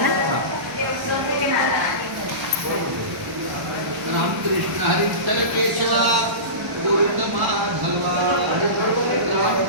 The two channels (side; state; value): left; late; 1.0 ms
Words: रामकृष्ण हरी विठ्ठल केशवा गोविंद माधवा.